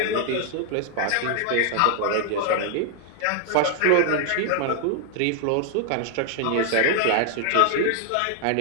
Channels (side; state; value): both; different; correlation 0.00